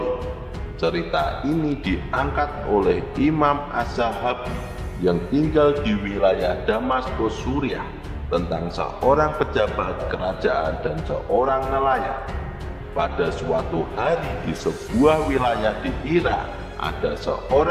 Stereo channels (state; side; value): identical; both; correlation 1.00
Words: Cerita ini diangkat oleh Imam Az-Zahabi yang tinggal di wilayah Damaskus, Suriah, tentang seorang pejabat kerajaan dan seorang nelayan. Pada suatu hari di sebuah wilayah di Irak, ada